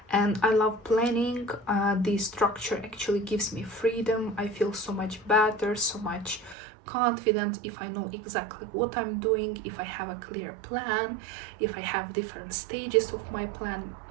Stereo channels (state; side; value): drops out; left; at 6.6 s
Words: and I love planning. The structure actually gives me freedom. I feel so much better, so much confident if I know exactly what I'm doing, if I have a clear plan, if I have different stages of my plan.